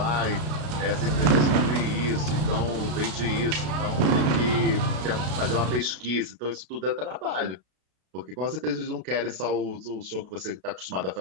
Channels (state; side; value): late; left; 33 ms